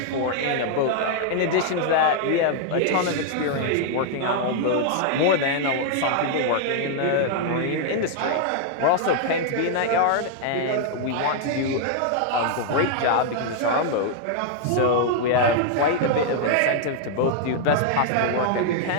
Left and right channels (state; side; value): different; both; correlation 0.00